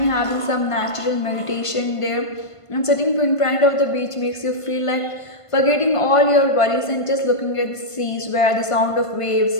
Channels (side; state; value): right; late; 1.5 ms